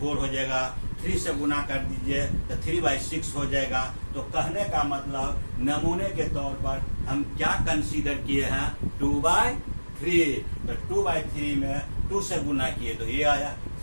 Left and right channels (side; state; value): both; inverted; correlation -1.00